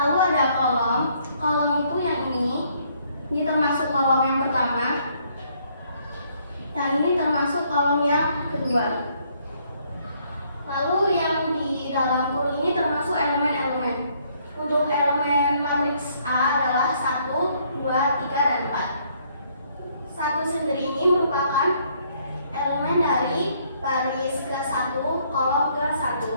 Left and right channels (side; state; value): both; inverted; correlation -0.67